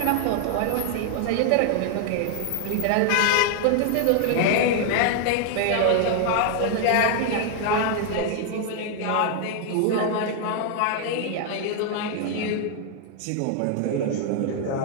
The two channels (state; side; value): different; both; correlation 0.00